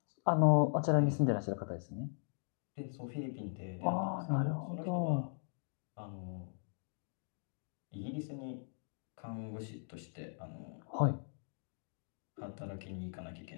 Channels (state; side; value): silent; right; digital silence